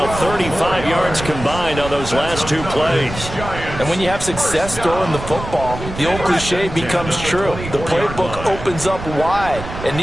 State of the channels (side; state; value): right; noise; rumble, 10 dB below the sound